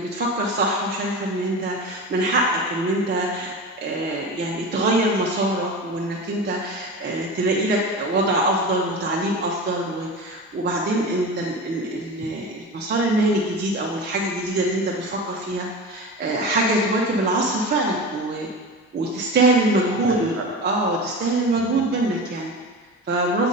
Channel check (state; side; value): normal; both; correlation 0.29